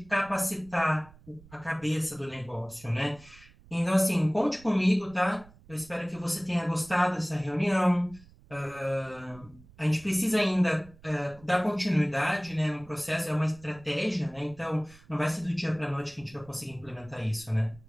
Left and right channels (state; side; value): noise; right; rumble, 24 dB below the sound